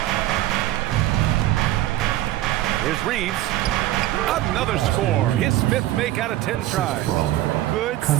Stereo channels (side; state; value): left; quieter; 14.9 dB